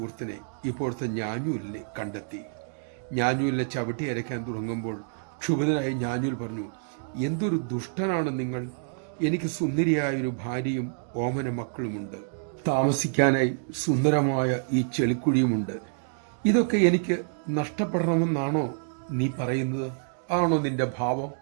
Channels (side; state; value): left; silent; digital silence